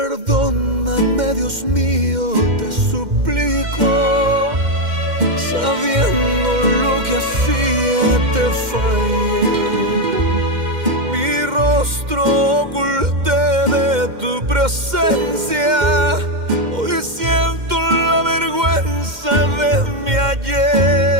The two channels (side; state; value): left; late; 2.1 ms